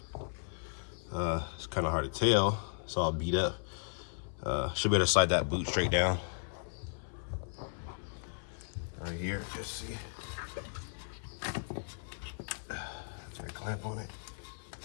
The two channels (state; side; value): silent; right; 54 dB below the other